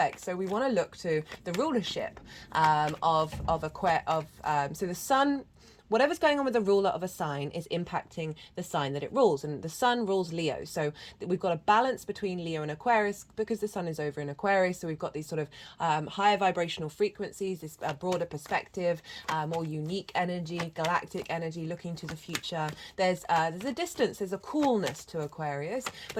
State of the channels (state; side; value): identical; both; correlation 1.00